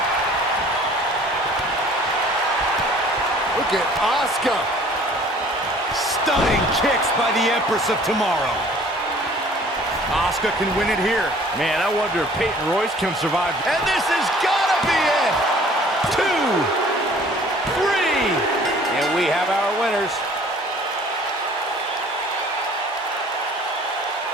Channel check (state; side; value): normal; both; correlation 0.52